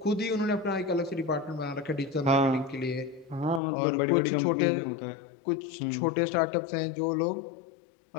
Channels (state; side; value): drops out; right; at 3.6 s